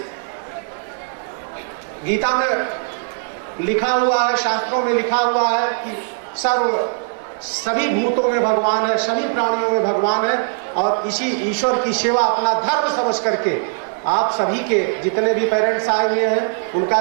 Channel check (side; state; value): left; silent; 64 dB below the other